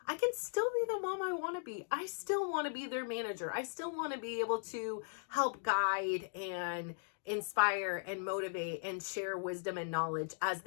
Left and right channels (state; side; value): silent; right; digital silence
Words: I can still be the mom I want to be. I still want to be their manager. I still want to be able to help guide and inspire and motivate and share wisdom and knowledge as